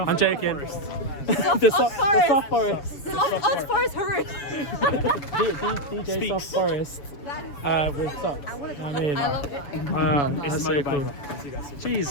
joking. The Soft Forest. Odd Forest, hurry. DJ Soft Forest. With socks. I mean, I love it. that's so cool.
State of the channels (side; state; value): right; late; 7.1 ms